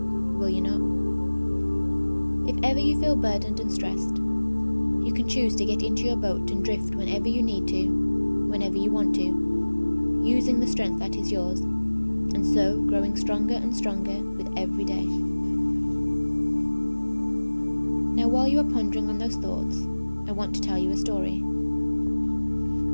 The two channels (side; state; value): both; inverted; correlation -1.00